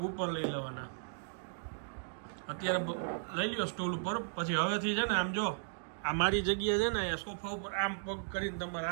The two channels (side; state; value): left; silent; digital silence